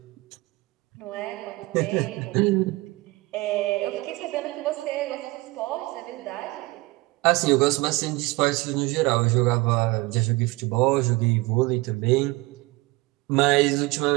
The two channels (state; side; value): quieter; left; 22.4 dB